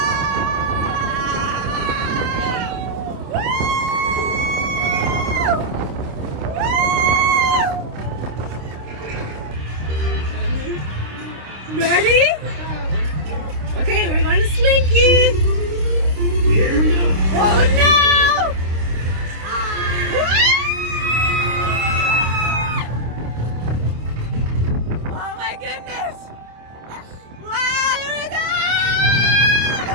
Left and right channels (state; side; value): late; left; 26 ms